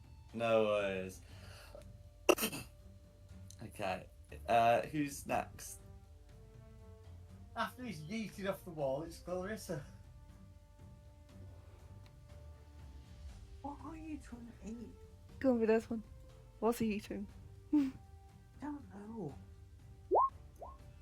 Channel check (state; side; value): identical; both; correlation 1.00